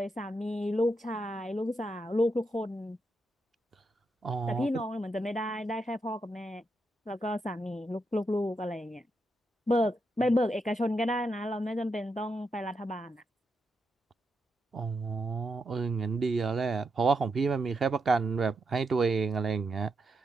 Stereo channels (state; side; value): normal; both; correlation 0.83